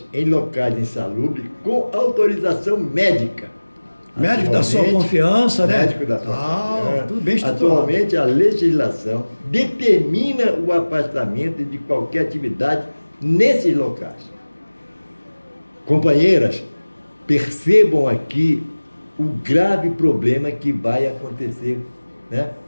em locais insalubres com autorização médica. Médico da sua confiança, né? Médico da sua confiança. Tudo bem estruturado. Atualmente, a legislação determina o afastamento de qualquer atividade nesses locais. Companheiras, percebam aqui o grave problema que vai acontecer, né?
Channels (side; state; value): both; inverted; correlation -1.00